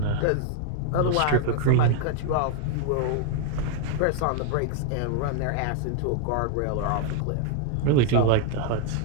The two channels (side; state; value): both; different; correlation 0.00